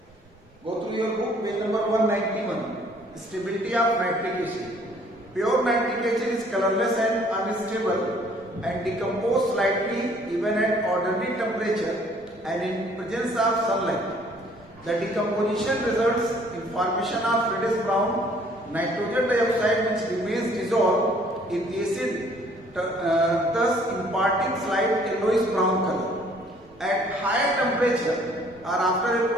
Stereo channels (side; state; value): both; normal; correlation 0.59